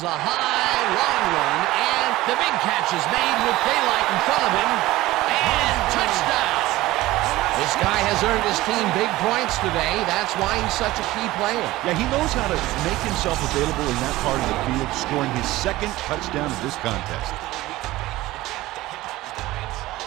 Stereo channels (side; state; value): left; quieter; 17.6 dB